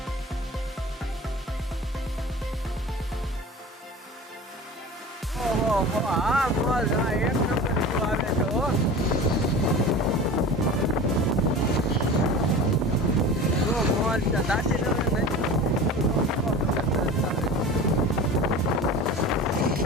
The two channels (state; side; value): normal; both; correlation 0.36